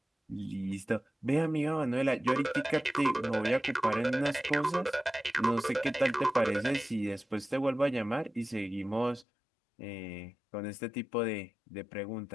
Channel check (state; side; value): drops out; right; at 9.2 s